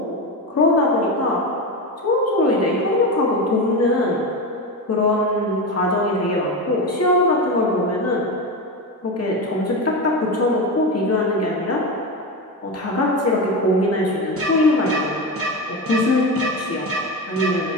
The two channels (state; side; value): normal; both; correlation 0.19